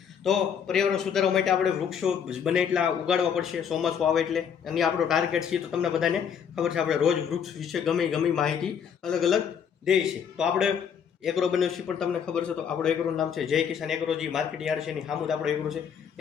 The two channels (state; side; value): quieter; right; 7.6 dB